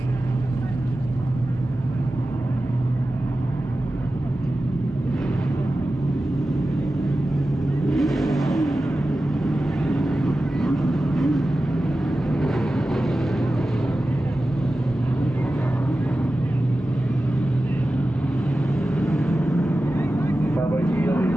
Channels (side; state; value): both; normal; correlation 0.94